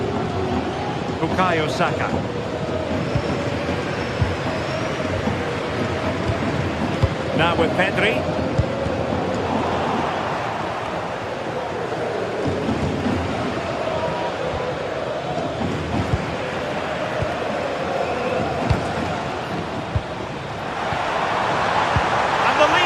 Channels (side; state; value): both; identical; correlation 1.00